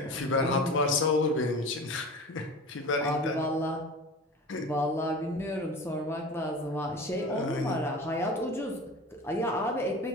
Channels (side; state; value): both; normal; correlation 0.35